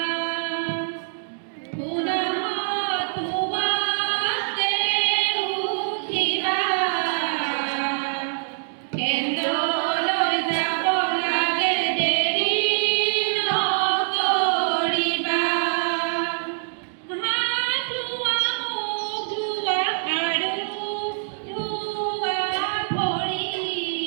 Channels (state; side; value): silent; left; digital silence